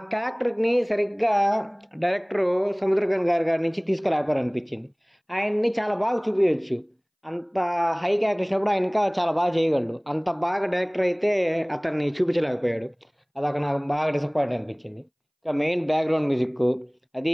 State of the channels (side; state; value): both; identical; correlation 1.00